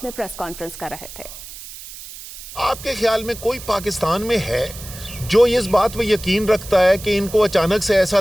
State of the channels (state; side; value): noise; right; hiss, 14 dB below the sound